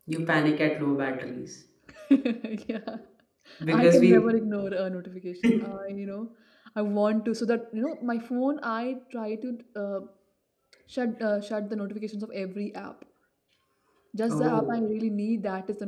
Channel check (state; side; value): identical; both; correlation 1.00